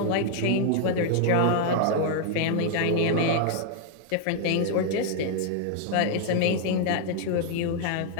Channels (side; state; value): both; different; correlation 0.00